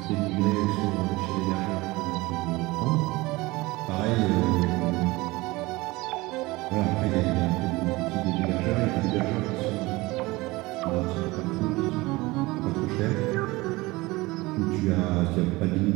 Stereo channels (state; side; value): quieter; left; 21.5 dB